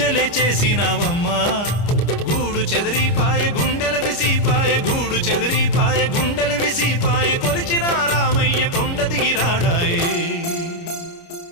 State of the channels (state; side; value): late; right; 29 ms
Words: చేసినావమ్మా గూడు చెదిరిపాయ గుండెల విసిపాయ గూడు చెదిరిపాయ గుండెల విసిపాయ కొలిచిన రామయ్య కొండ దిగిరాడాయే